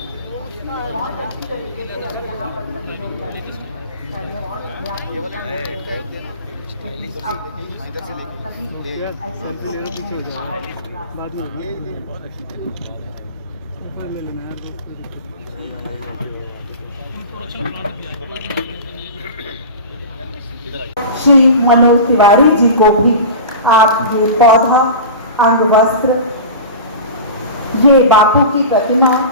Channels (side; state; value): both; inverted; correlation -0.31